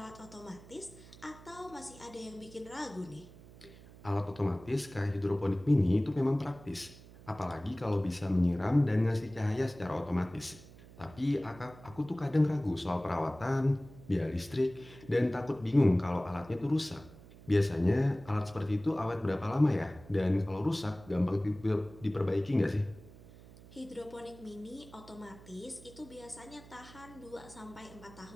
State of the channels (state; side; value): noise; right; hum, 20 dB below the sound